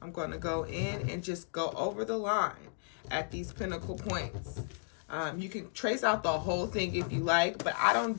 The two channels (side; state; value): right; silent; digital silence